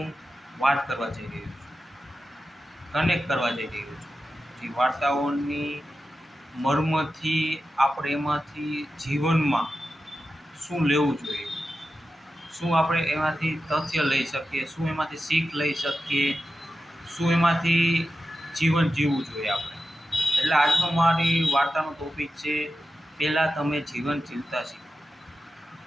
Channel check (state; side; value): normal; both; correlation 0.92